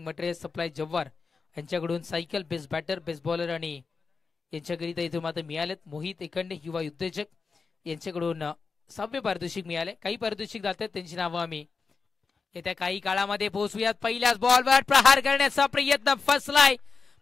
material supply Jawhar यांच्याकडून cycle best batter best bowler आणि यांच्याकरिता इथून मात्र मिळालेत. मोहित एखंडे युवा उद्योजक यांच्याकडून 6वे पारितोषिक मिळाले. काही पारितोषिक जातात त्यांची नावं आम्ही येत्या काही काळामध्ये पोहोचूयात. पहिल्याच बॉलवर प्रहार करण्याचा प्रयत्न फसलाय.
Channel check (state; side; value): quieter; right; 4.8 dB